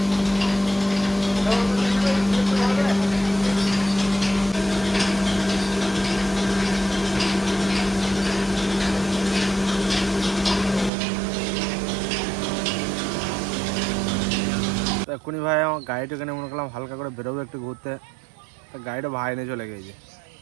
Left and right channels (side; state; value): left; drops out; at 10.9 s